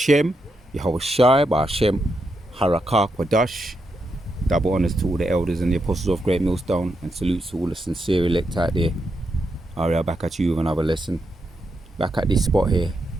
Yahweh Shai Ba'Shem, Harakah Kwadash. Double honors to all the elders and the apostles of Great Millstone, and salutes to all the sincere elect out there. Aria, back at you with another lesson. Back at this spot here.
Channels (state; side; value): normal; both; correlation 0.83